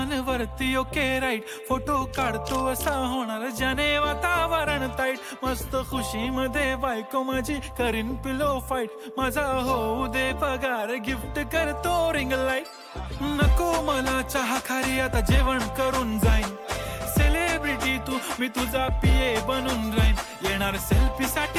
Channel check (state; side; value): identical; both; correlation 1.00